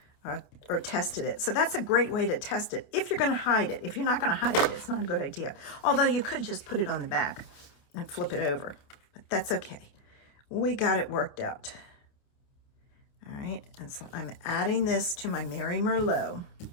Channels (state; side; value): late; right; 28 ms